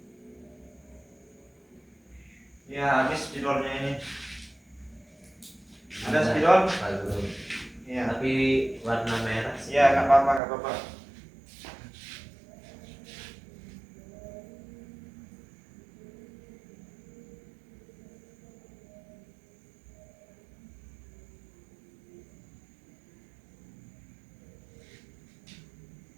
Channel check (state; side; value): drops out; left; at 10.4 s